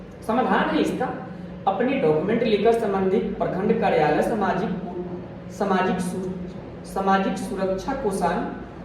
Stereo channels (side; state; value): both; identical; correlation 1.00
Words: समाधान है इसका, अपने डॉक्यूमेंट लेकर संबंधित प्रखंड कार्यालय सामाजिक सुरक्षा कोषांग